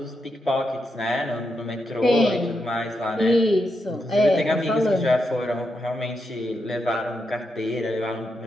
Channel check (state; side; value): normal; both; correlation 0.84